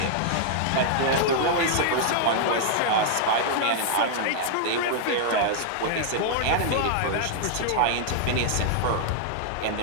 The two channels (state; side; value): different; both; correlation -0.01